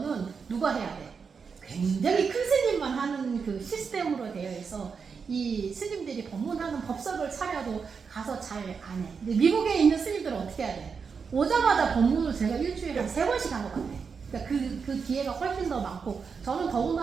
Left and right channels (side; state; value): left; quieter; 5.7 dB